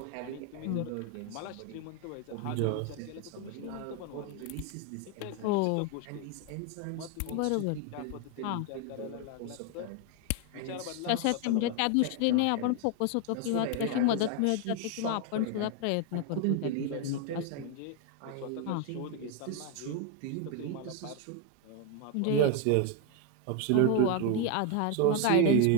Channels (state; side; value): different; both; correlation 0.01